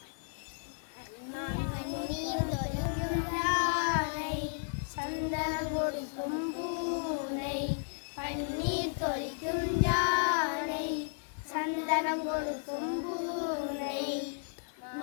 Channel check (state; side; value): silent; right; digital silence